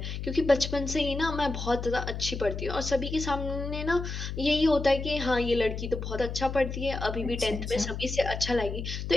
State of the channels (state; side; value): noise; left; hum, 5 dB below the sound